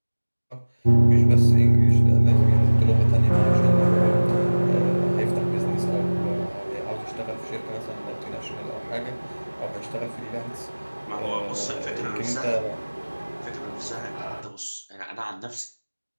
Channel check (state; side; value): inverted; both; correlation -1.00